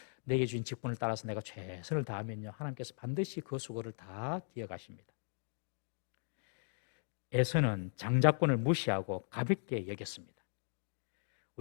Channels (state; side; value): silent; right; digital silence